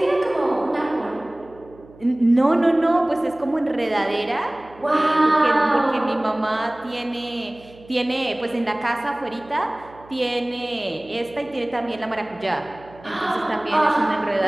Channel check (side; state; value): right; noise; hum, 23 dB below the sound